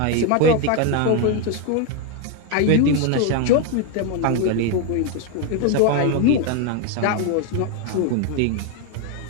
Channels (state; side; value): different; both; correlation 0.01